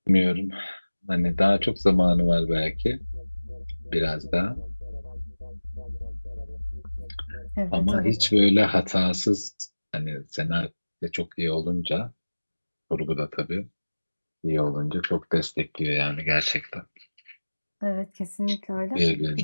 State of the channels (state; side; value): inverted; both; correlation -1.00